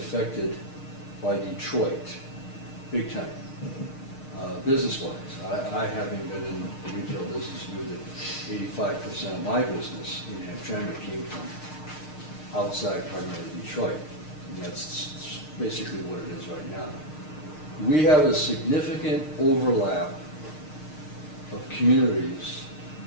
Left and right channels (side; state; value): right; late; 6.5 ms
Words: by Detroit, big time, business-wise. I, having been in the retail business, knew that 85% of my business in Hamtramck came from outside, primarily Detroit. And that's basically what it is right now. We have a significant overlap of communities